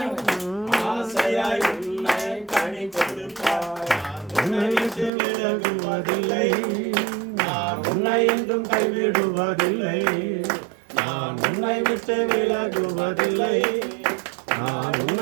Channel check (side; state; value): left; drops out; at 5.1 s